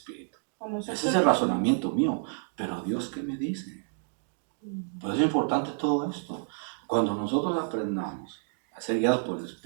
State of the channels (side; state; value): left; silent; digital silence